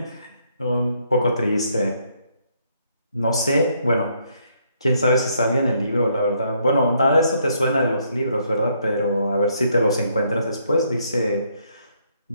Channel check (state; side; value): inverted; both; correlation -0.71